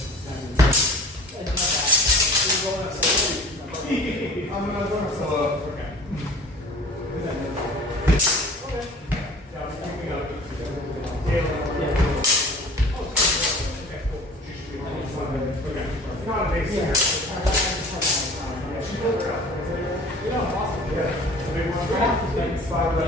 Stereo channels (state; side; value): normal; both; correlation 0.45